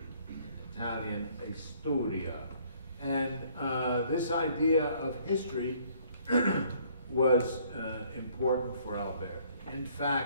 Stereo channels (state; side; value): inverted; both; correlation -0.61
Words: Italian, a storia. And this idea of history was important for Alberti. In